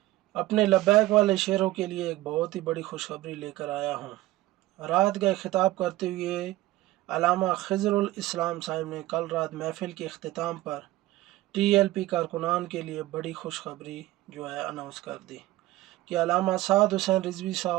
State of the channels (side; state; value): left; quieter; 17.2 dB